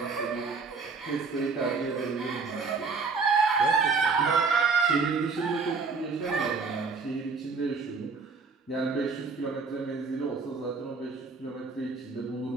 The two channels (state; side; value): quieter; left; 4.6 dB